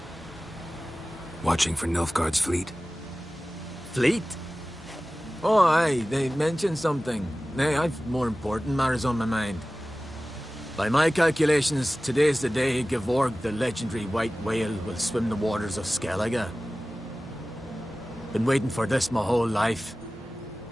Watching for Nilfgaard's fleet? Fleet? Oh, aye, they mentioned something. Nay, I've more important matters on my mind. By my calculations, today's the day Gevorg, the legendary white whale, will swim the waters of Skellige. Been waiting for this my whole life.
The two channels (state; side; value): normal; both; correlation 0.97